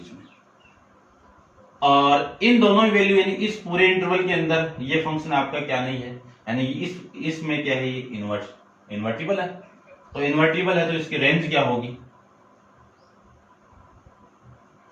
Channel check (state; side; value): identical; both; correlation 1.00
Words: में। और इन दोनों वैल्यू यानी इस पूरे इंटरवल के अंदर ये फंक्शन आपका क्या नहीं है, यानी इसमें क्या है, ये इन्वर्टिबल है। तो इन्वर्टिबल है तो इसकी रेंज क्या होगी,